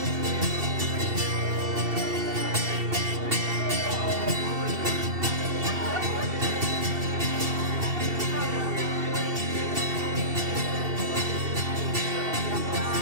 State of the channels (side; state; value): left; late; 2.7 ms